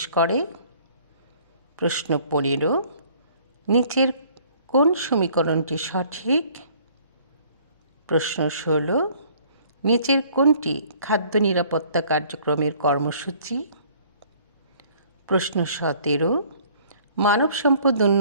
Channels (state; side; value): inverted; both; correlation -0.57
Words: করে? প্রশ্ন 15, নিচের কোন সমীকরণটি সঠিক? প্রশ্ন 16, নিচের কোনটি খাদ্য নিরাপত্তা কার্যক্রমের কর্মসূচি? প্রশ্ন 17, মানব সম্পদ